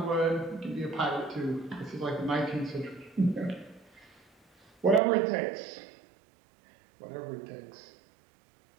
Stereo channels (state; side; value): drops out; left; at 5.0 s